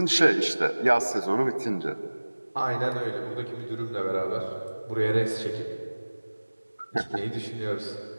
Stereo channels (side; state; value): both; inverted; correlation -1.00